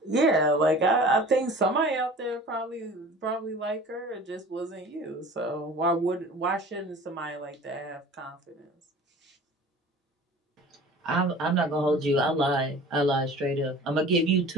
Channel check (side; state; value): both; normal; correlation 0.43